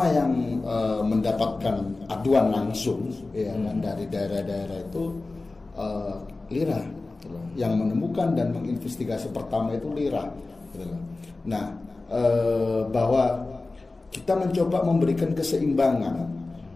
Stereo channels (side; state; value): right; quieter; 3.4 dB